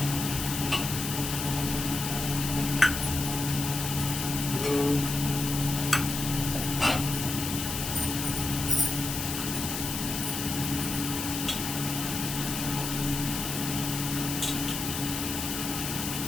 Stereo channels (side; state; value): left; noise; hiss, 4 dB below the sound